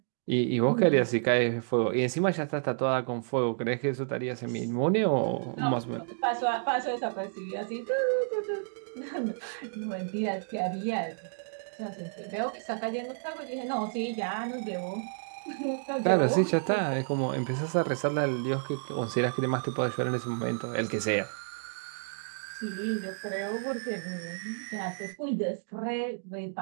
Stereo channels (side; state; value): left; silent; digital silence